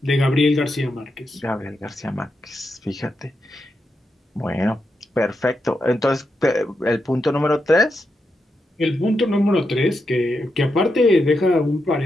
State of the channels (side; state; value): both; normal; correlation 0.85